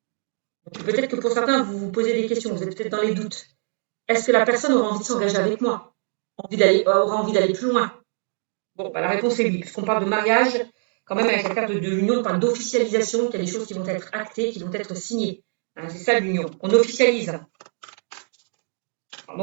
Peut-être que pour certains, vous vous posez des questions, vous êtes peut-être dans les doutes. Est-ce que la personne aura envie de s'engager avec moi? Aura envie d'aller plus loin? Bon, bah, la réponse est oui, puisqu'on parle de mariage, quand même avec la carte de l'union, on parle d'officialisation, qu'il y a des choses qui vont être actées, qui vont être signées. Hein, c'est ça l'union, on officialise.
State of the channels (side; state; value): left; silent; 63 dB below the other